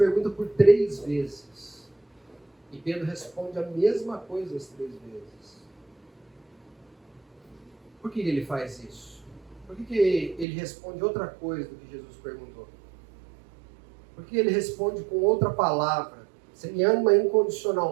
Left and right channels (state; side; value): drops out; left; at 10.5 s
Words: por 3 vezes. E Pedro responde a mesma coisa as 3 vezes. Por que ele faz isso? Por que ele responde outra coisa do que Jesus perguntou? Por que ele responde com outra palavra? Você me ama